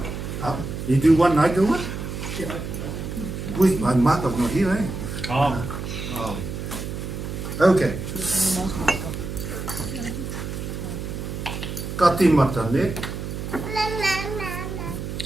You do one, I do one? Yeah. Wait, my mother's not here, eh? Oh. Okay. Ka tīmata, ne?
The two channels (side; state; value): right; noise; hum, 6 dB below the sound